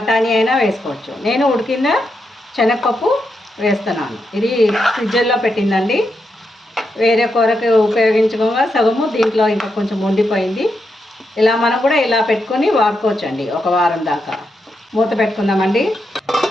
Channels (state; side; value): normal; both; correlation 0.84